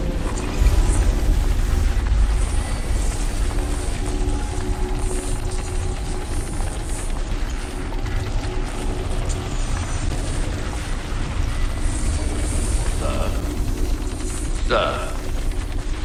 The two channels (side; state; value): both; identical; correlation 1.00